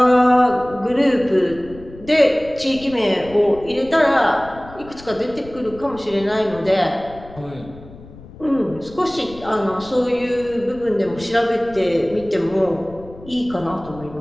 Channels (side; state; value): left; noise; rumble, 18 dB below the sound